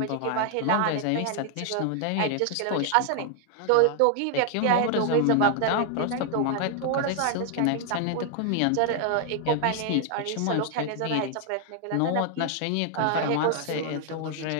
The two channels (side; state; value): both; different; correlation 0.00